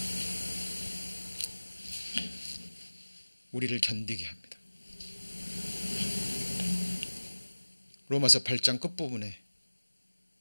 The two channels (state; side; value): inverted; both; correlation -1.00